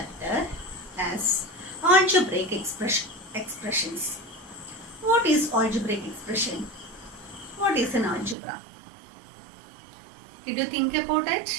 as algebraic expressions. What is algebraic expression? What is an algebra? Did you think about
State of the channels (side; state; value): left; drops out; at 8.3 s